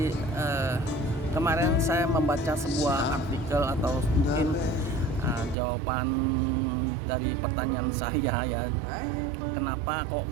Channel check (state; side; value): drops out; left; at 5.6 s